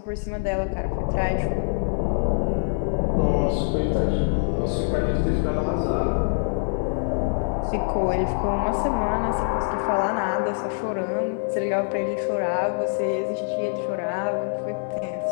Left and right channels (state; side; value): silent; right; digital silence